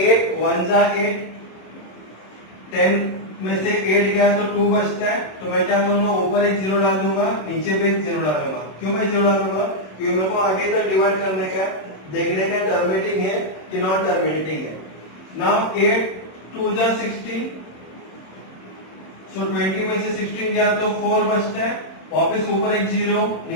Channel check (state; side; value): late; right; 26 ms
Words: 8 1 जा 8, 10 में से 8 गया तो 2 बचता है, तो मैं क्या करूंगा ऊपर एक 0 डाल दूंगा, नीचे भी एक 0 डालूंगा, क्यों मैं 0 डालूंगा क्योंकि मेरे को आगे तक डिवाइड करने का, देखने का टर्मिनेटिंग है कि नॉन टर्मिनेटिंग है. नाउ 8 2 जा 16, सो 20 में से 16 गया तो 4 बचता है, वापस ऊपर एक 0